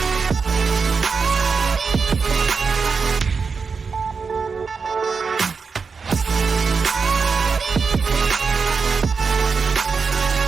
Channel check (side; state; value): left; quieter; 5.2 dB